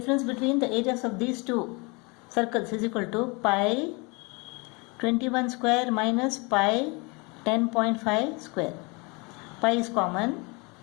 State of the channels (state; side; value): quieter; right; 28.9 dB